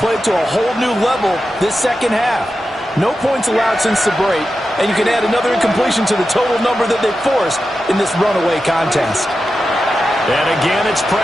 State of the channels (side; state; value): both; normal; correlation 0.91